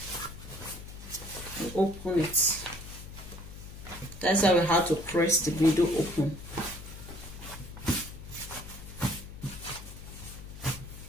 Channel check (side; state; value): left; noise; hum, 13 dB below the sound